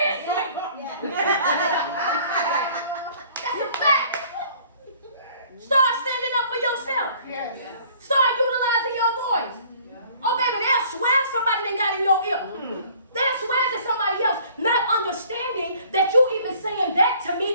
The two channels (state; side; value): inverted; both; correlation -0.55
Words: it's me. That's a fact. Start standing up for yourself. Start utilizing your voice. Oh, baby, they'll swear somebody done got in your ear. They'll swear to somebody else, not understanding that you even saying that to